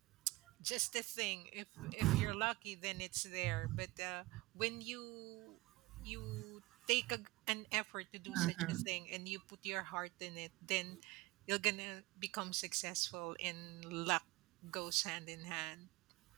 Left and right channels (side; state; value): left; quieter; 21.2 dB